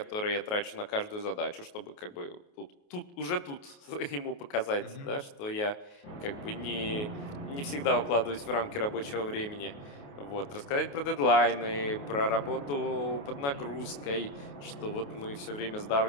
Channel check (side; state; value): right; late; 28 ms